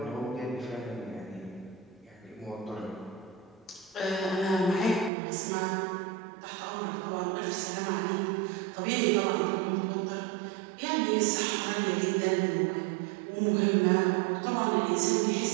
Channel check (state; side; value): drops out; left; at 5.1 s